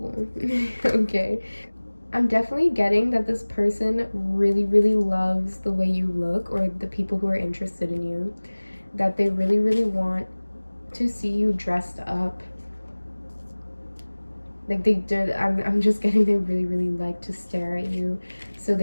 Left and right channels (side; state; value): both; inverted; correlation -1.00